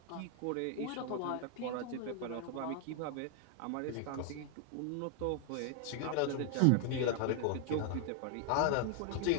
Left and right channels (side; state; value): both; different; correlation 0.00